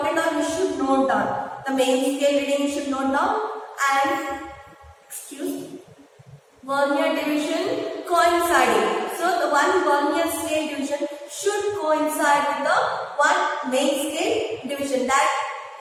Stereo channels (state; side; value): identical; both; correlation 1.00